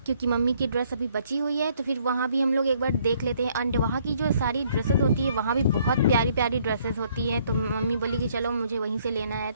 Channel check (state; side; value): inverted; both; correlation -0.65